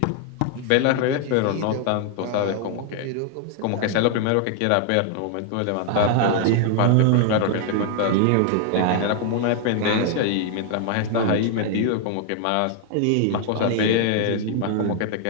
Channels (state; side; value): different; both; correlation 0.00